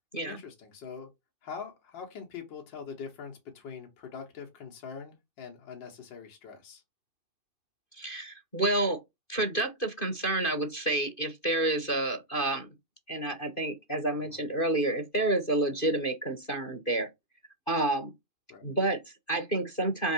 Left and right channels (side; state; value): right; late; 2.5 ms